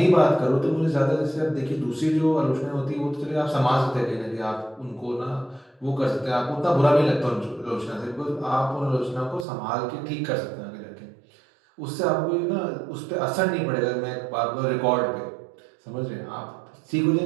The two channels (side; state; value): left; drops out; at 9.5 s